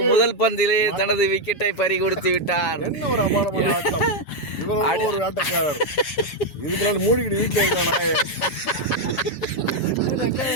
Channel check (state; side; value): late; right; 7.3 ms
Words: முதல் பந்திலே தனது விக்கெட்டை பறி கொடுத்து விட்டார்.